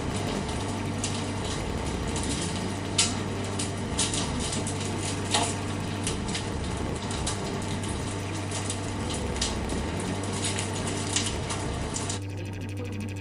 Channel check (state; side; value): identical; both; correlation 1.00